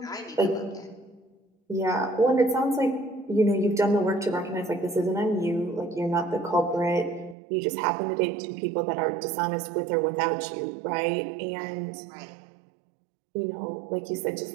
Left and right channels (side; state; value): left; drops out; at 7.4 s